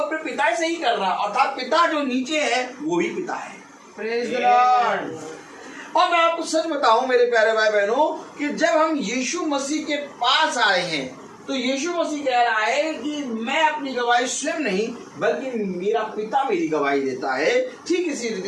पिता से ही कर रहा है, अर्थात पिता जो नीचे है वो ही पिता है। Praise the Lord. और मैं आपको सच बताऊं मेरे प्यारे भाई बहनों कि जब हम यीशु मसीह के पास आए हैं तो यीशु मसीह कह रहा है कि मैं अपनी गवाही स्वयं नहीं बल्कि मेरा पिता मेरी गवाही देता है। ठीक इसी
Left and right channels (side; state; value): both; identical; correlation 1.00